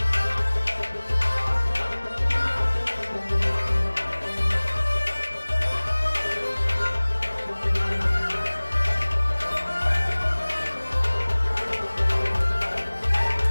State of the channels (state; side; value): inverted; both; correlation -1.00